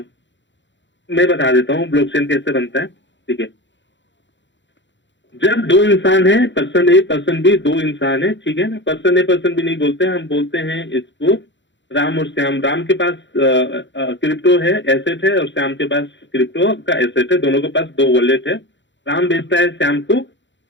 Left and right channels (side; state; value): right; late; 0.53 ms